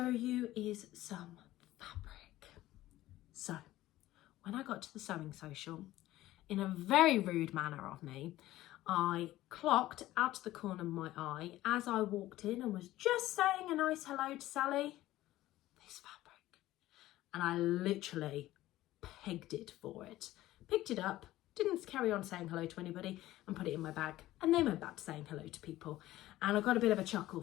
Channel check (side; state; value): right; quieter; 15.7 dB